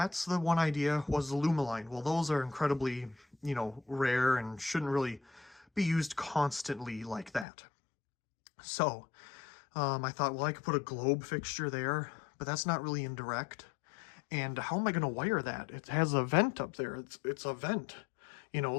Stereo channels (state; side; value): drops out; right; at 7.5 s